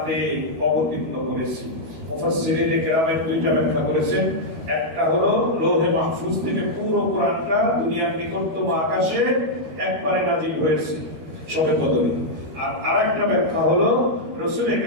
অবতীর্ণ করেছি। মুফাসসিরিন কেরামের দুইটা ব্যাখ্যা করেছেন। একটা হলো লৌহে মাহফুজ থেকে পুরো কোরআনটা দুনিয়ার নিকটতম আকাশে একবারে নাজিল হয়েছে শবে কদরে। আর আরেকটা ব্যাখ্যা হলো রাসূল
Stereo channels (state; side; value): late; left; 13 ms